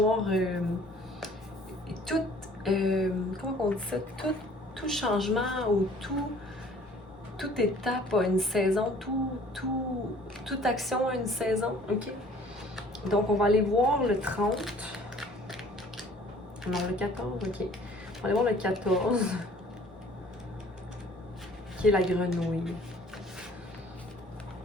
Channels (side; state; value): both; normal; correlation 0.53